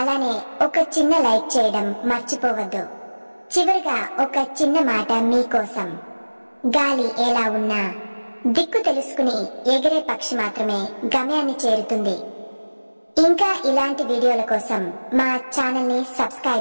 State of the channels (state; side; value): inverted; both; correlation -1.00